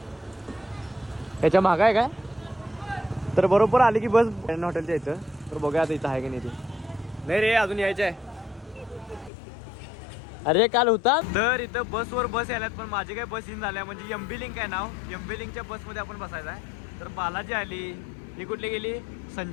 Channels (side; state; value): right; drops out; at 9.3 s